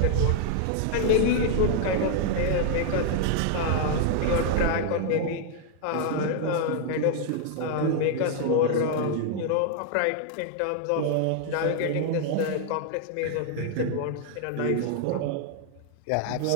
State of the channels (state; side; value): different; both; correlation 0.00